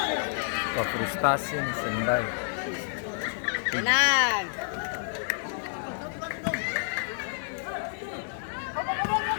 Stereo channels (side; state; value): right; silent; digital silence